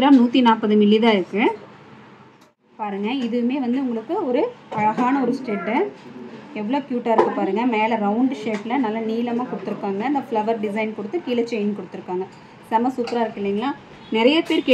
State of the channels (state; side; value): identical; both; correlation 1.00